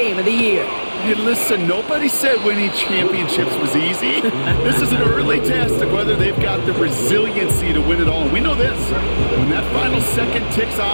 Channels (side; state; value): both; inverted; correlation -1.00